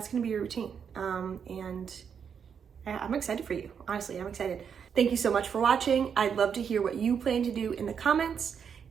routine, and I'm excited for you. Honestly, I'm excited. Thank you so much for watching. I'd love to hear what you plan to do in the comments,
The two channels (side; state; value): left; quieter; 7.2 dB